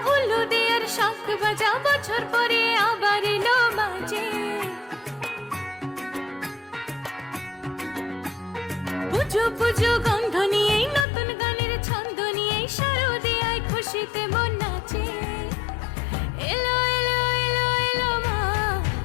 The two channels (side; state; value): right; drops out; at 11.1 s